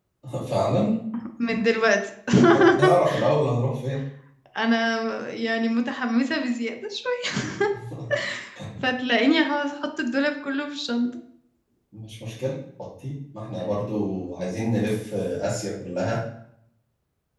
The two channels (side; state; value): both; identical; correlation 1.00